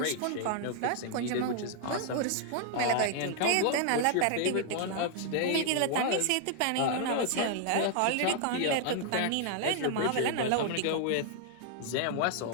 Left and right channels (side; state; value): both; different; correlation 0.00